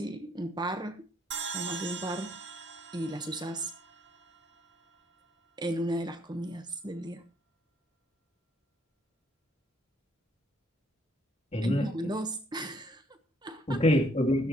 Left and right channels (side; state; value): both; normal; correlation 0.67